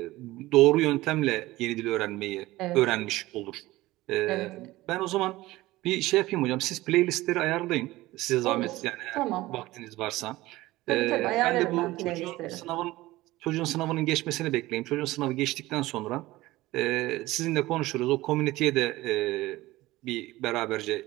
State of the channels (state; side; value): quieter; left; 18.2 dB